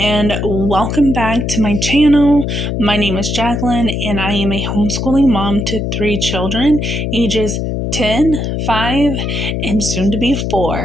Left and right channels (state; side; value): noise; left; hum, 2 dB below the sound